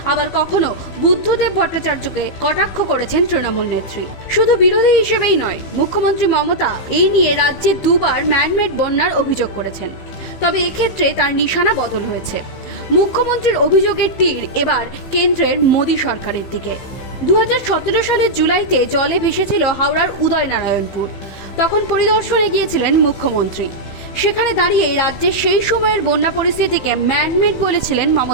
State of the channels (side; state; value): right; late; 15 ms